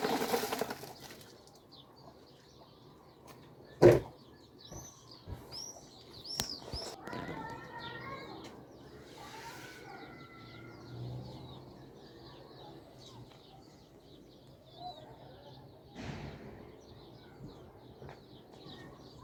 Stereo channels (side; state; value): both; identical; correlation 1.00